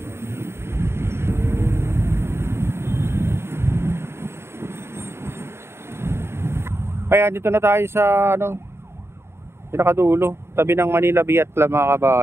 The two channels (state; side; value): late; left; 0.12 ms